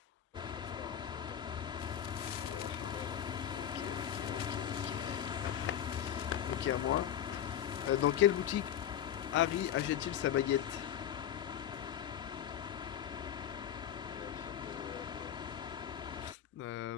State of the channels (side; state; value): right; quieter; 10.0 dB